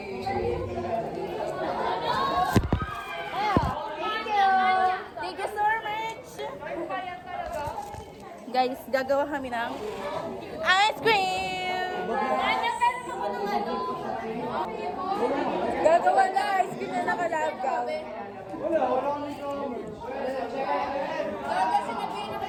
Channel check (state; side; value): identical; both; correlation 1.00